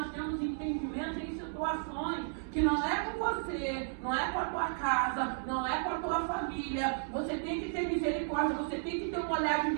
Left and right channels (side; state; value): left; silent; digital silence